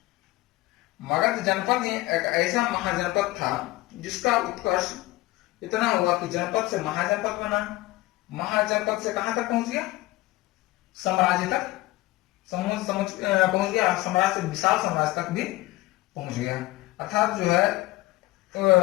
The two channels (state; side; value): quieter; right; 19.1 dB